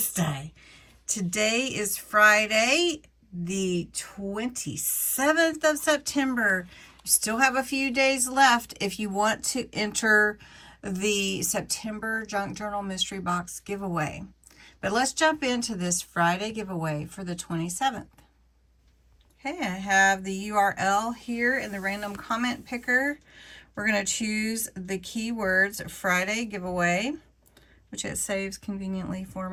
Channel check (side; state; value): both; identical; correlation 1.00